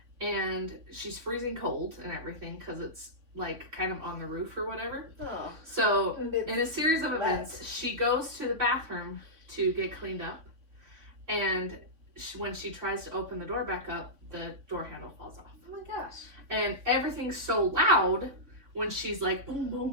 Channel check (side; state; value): left; late; 3.7 ms